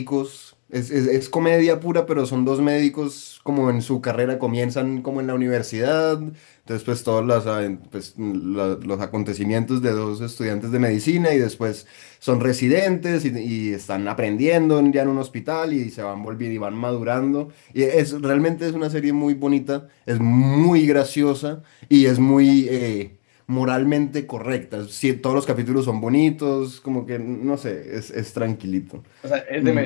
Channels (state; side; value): silent; right; digital silence